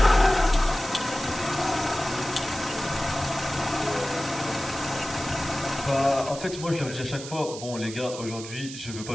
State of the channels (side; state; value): right; noise; hiss, 11 dB below the sound